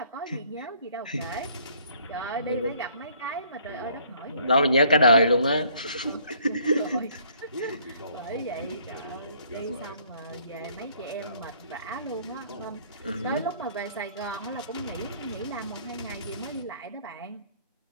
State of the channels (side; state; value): both; inverted; correlation -0.61